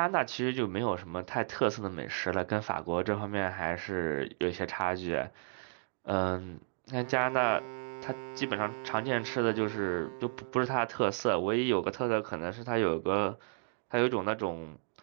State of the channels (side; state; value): left; silent; digital silence